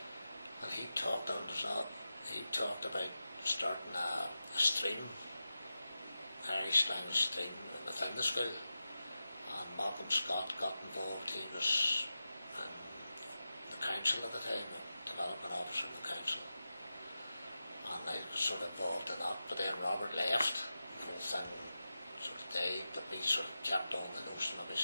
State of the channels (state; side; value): inverted; both; correlation -0.93